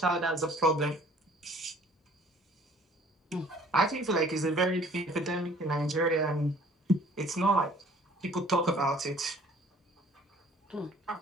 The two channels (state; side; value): normal; both; correlation 0.54